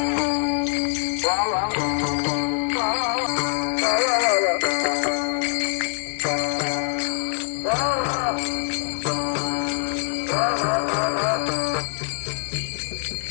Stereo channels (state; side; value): silent; right; digital silence